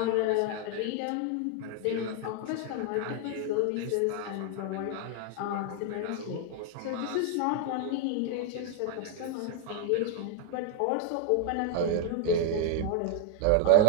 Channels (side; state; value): both; different; correlation 0.00